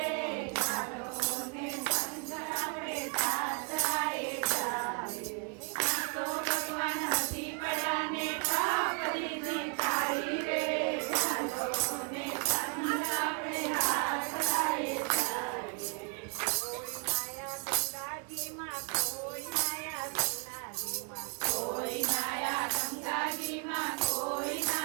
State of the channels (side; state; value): left; quieter; 36.2 dB